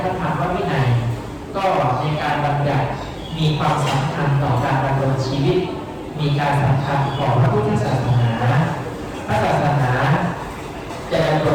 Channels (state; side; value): identical; both; correlation 1.00